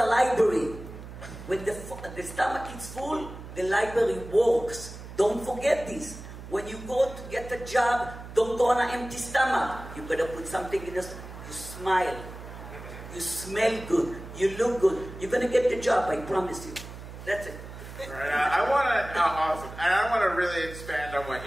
library. When the stomach is full, the library works. Don't forget this. When you go to get a job, don't go on an empty stomach. You better put something in your stomach. You smile. You smell good. You look good. You're going to get the job, I promise you. That's it. Right. I want to really expand on what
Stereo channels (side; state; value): right; noise; hum, 13 dB below the sound